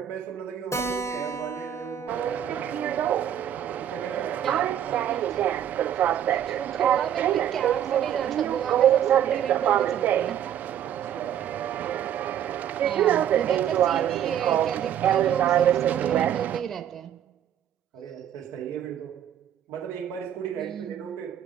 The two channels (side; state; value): left; quieter; 10.1 dB